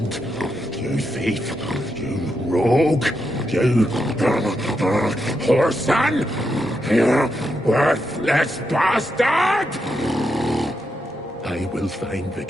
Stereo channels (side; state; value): both; normal; correlation 0.83